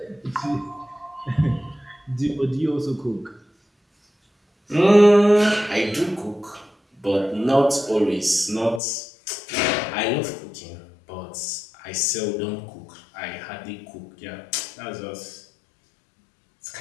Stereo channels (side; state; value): right; drops out; at 8.8 s